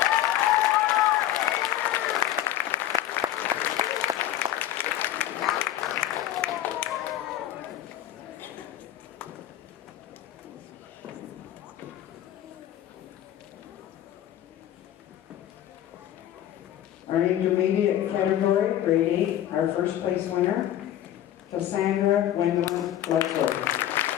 Our intermediate category, grade 8, our first place winner, Cassandra Gwendolyn Bledsoe.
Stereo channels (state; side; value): quieter; right; 12.2 dB